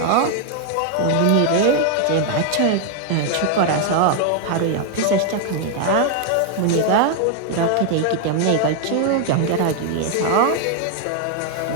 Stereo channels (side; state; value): both; different; correlation 0.00